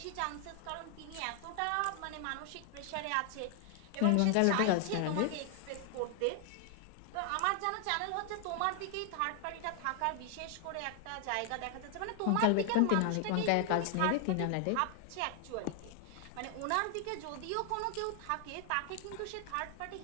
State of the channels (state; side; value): different; both; correlation 0.00